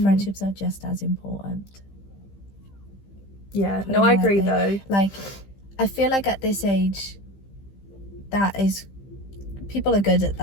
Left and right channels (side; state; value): right; late; 15 ms